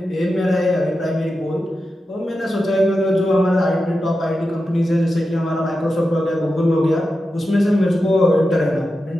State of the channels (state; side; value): normal; both; correlation 0.90